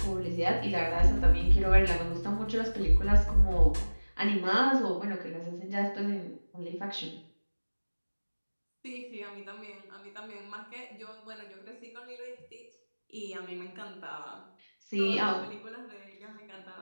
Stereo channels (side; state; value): both; inverted; correlation -1.00